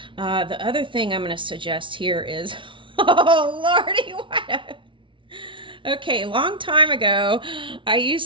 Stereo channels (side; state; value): left; late; 0.25 ms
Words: the other thing I'm going to suggest here is, oh, Lordy, what? Okay, long time ago, I